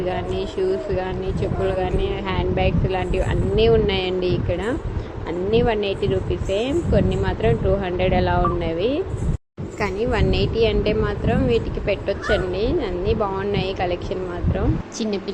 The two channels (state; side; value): identical; both; correlation 1.00